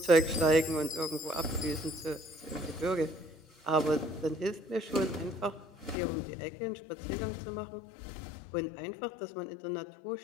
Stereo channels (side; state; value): right; drops out; at 6.0 s